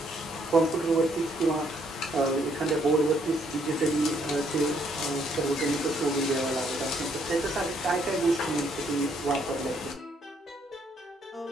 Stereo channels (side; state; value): both; normal; correlation 0.69